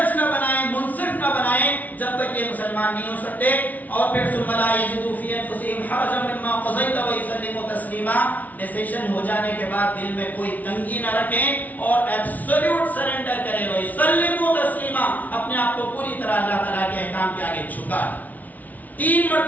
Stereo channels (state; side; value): late; right; 0.076 ms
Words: نہ بنائیں، منصف نہ بنائیں، جب تک یہ مسلمان نہیں ہو سکتے۔ اور پھر ثم لا یجدوا فی انفسہم حرجا مما قضیت ویسلموا تسلیما، ڈیسیشن ہو جانے کے بعد دل میں کوئی تنگی نہ رکھیں اور ایبسولوٹ سرنڈر کریں، ویسلموا تسلیما، اپنے آپ کو پوری طرح اللہ تعالیٰ کے احکام کے آگے جھکا۔ 3